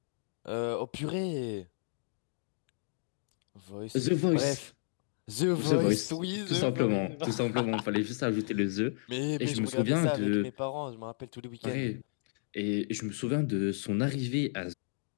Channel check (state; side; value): silent; right; digital silence